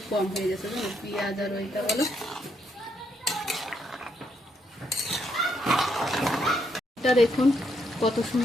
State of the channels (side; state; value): both; normal; correlation 0.76